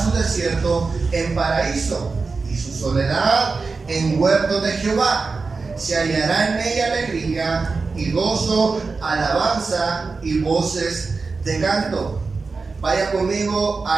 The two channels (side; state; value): left; quieter; 4.3 dB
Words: su desierto en paraíso, y su soledad en huerto de Jehová. Se hallará en ella alegría y gozo, alabanza y voces de canto. Vaya conmigo